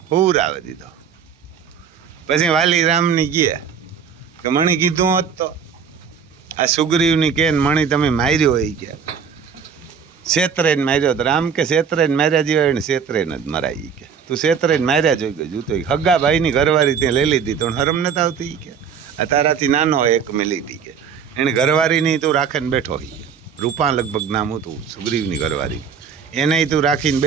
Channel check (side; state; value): left; quieter; 6.9 dB